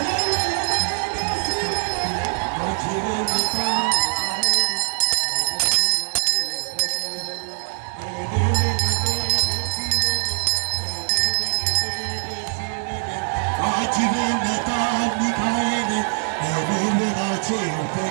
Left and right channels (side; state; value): left; silent; 64 dB below the other